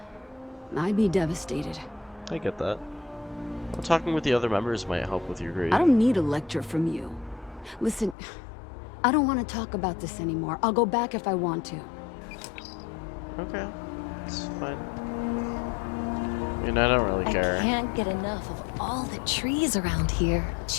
I'd be devastated. I get that. Well, talking with the other members might help with your grief. I don't need a lecture from you. Listen, I don't want to talk about this anymore. I'll go back if I want to. Okay, it's fine. I mean, I don't really care. I can't get enough of all the trees around here.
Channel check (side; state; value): right; drops out; at 8.2 s